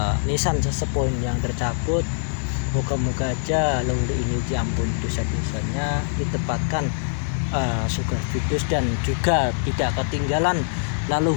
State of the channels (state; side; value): silent; right; digital silence